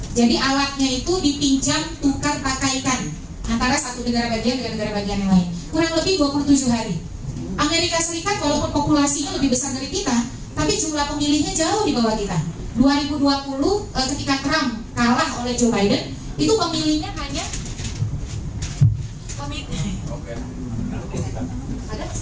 Jadi alatnya itu dipinjam, tukar, pakaikan antara satu negara bagian dengan negara bagian yang lain. Kurang lebih 27 hari. Amerika Serikat walaupun populasinya lebih besar dari kita, tapi jumlah pemilihnya jauh di bawah kita. 2020 ketika Trump kalah oleh Joe Biden, itu pemilihnya hanya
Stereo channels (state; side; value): identical; both; correlation 1.00